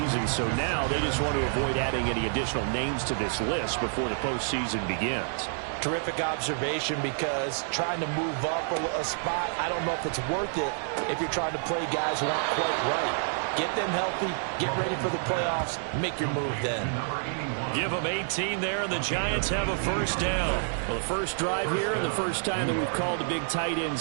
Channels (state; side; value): silent; left; digital silence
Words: so now they just want to avoid adding any additional names to this list before the postseason begins. Terrific observation, because trying to move up a spot, I don't know if it's worth it if you're trying to play guys who aren't quite right. Get them healthy, get ready for the playoffs, make your move then. Give them 18 there, and the Giants have a first down. Well, the first drive here and the first time that we've called the big tight